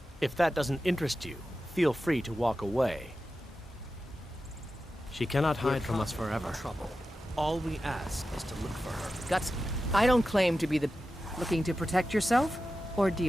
If that doesn't interest you, feel free to walk away. She cannot hide from us forever. All we ask is to look for her. Guts, I don't claim to be the... Looking to protect yourself or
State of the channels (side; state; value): both; normal; correlation 0.92